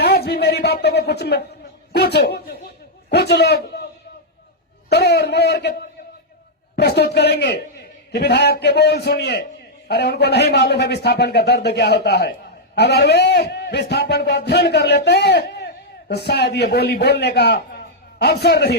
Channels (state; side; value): normal; both; correlation -0.04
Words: आज भी मेरी बातों को कुछ लोग तोड़ मोड़ के प्रस्तुत करेंगे कि विधायक के बोल सुनिए। अरे उनको नहीं मालूम है विस्थापन का दर्द क्या होता है। अगर वे विस्थापन को अध्ययन कर लेते तो शायद ये बोली बोलने का अवसर